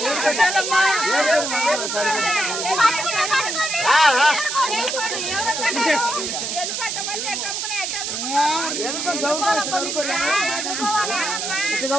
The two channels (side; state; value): right; noise; hiss, 3 dB below the sound